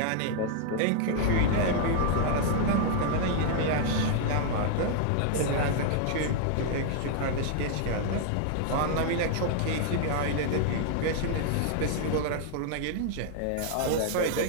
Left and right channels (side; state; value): both; different; correlation 0.00